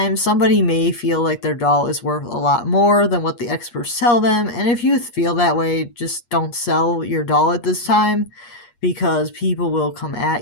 somebody may feel like their doll is worth a lot more than what the experts tell them. And if you feel that way, just don't sell your doll at this time, because people will come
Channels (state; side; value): late; right; 8.4 ms